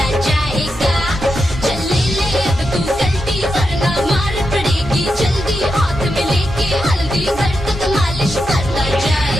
जाएगा। चल ले ले अब तू गलती वरना मार पड़ेगी जल्दी हाथ में लेके हल्दी घर तक मालिश करता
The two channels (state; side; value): normal; both; correlation 0.86